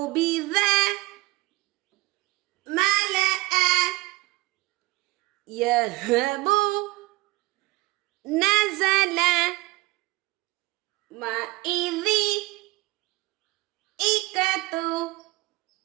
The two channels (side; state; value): left; quieter; 21.4 dB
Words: மலஅ, யஹபு, நஸல, மஇதி, இகது,